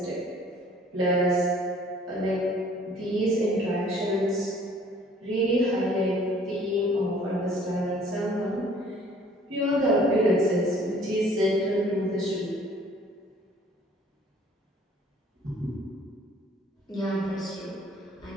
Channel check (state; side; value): normal; both; correlation 0.55